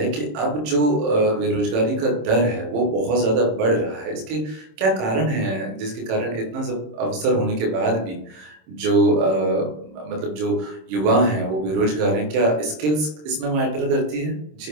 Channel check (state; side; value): late; left; 26 ms